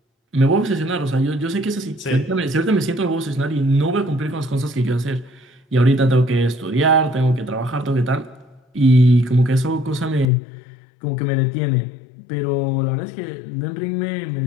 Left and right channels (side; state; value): right; drops out; at 10.3 s